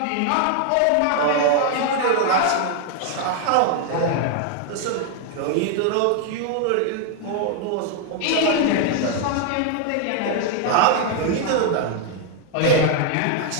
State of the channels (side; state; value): both; different; correlation 0.00